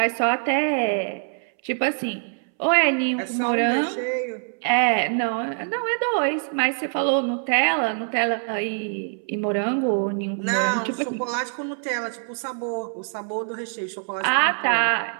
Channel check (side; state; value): left; silent; 63 dB below the other